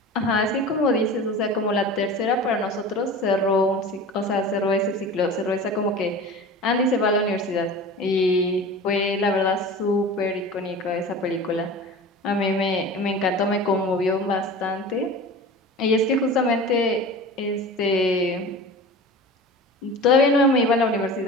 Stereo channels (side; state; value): both; normal; correlation 0.35